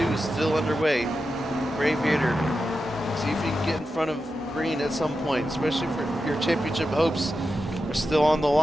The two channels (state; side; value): normal; both; correlation 0.90